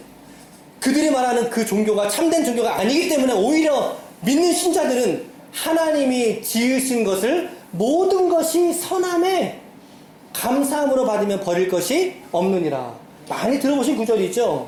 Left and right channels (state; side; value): identical; both; correlation 1.00